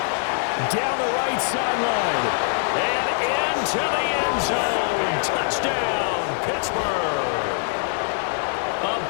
Down the right sideline. And into the end zone. Touchdown, Pittsburgh. A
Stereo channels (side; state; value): right; silent; digital silence